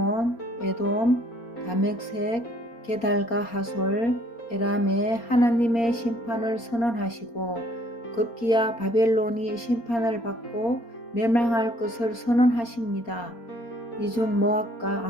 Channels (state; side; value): late; right; 4.3 ms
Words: 에돔, 다멕색, 게달과 하솔, 에람에 하나님의 심판을 선언하시고 급기야 바벨론이 심판을 받고 멸망할 것을 선언하십니다. 이중 모압과